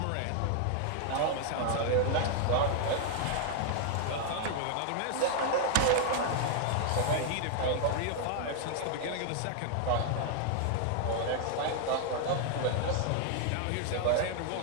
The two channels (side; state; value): both; different; correlation 0.00